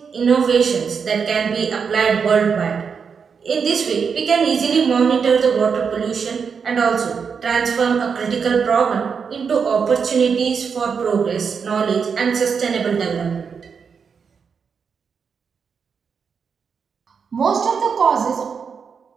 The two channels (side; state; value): left; quieter; 6.1 dB